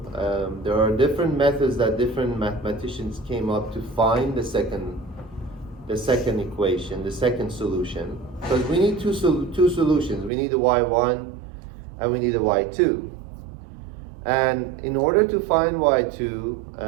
There are different methods that different mathematicians came up to find the second equation, the second solution. Because we need two solutions. We need the y1 and we need the y2. And in order to find y2,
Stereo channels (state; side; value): drops out; left; at 10.3 s